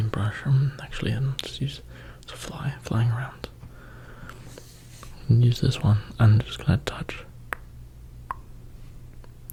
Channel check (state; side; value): identical; both; correlation 1.00